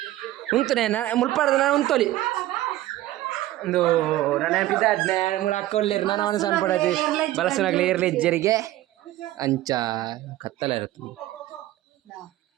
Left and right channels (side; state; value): left; quieter; 15.4 dB